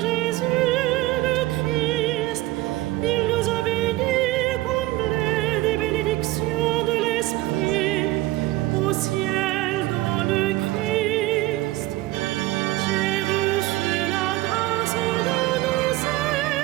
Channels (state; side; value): quieter; left; 17.9 dB